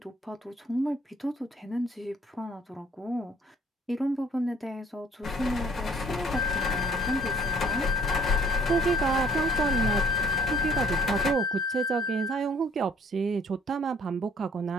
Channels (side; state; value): both; normal; correlation 0.57